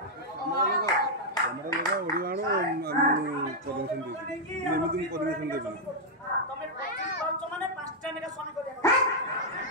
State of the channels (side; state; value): both; normal; correlation -0.04